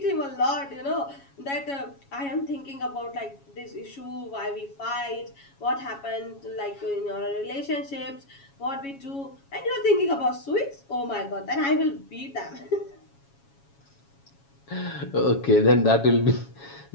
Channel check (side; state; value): right; late; 7.2 ms